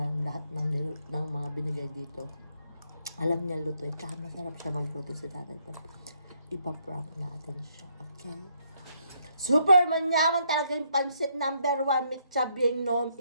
lahat ng mga binigay dito. Alam niya luto. Tsaka masarap siya magluto si tatay. Ipaprank natin siya. Okay? Super manyaman talaga yung pansit number 1. Mitsabyeng nom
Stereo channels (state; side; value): inverted; both; correlation -0.72